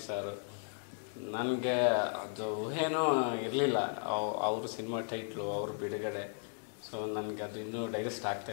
ಸಾರು. ನನಗೆ ಅದು ಊಹೆನೂ ಇರಲಿಲ್ಲ ಅವ್ರ ಸಿನಿಮಾ ಟೈಟ್ಲು, ಅವ್ರ ಬಿಡುಗಡೆ. ಸೊ ನನಗೆ ಅದು ಇನ್ನೂ ಡೈಜೆಸ್ಟ್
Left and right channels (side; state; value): right; silent; 54 dB below the other